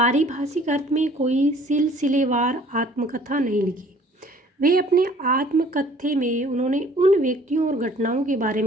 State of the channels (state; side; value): normal; both; correlation 0.54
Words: अर्थ में कोई सिलसिलेवार आत्मकथा नहीं लिखी। वे अपने आत्मकथ्य में उन्होंने उन व्यक्तियों और घटनाओं के बारे